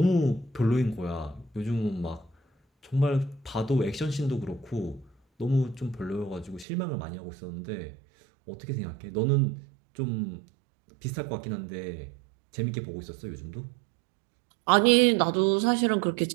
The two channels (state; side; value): drops out; left; at 6.7 s